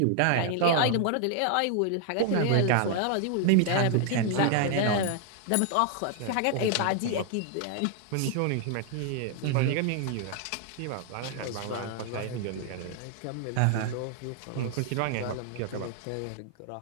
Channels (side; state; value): both; different; correlation 0.00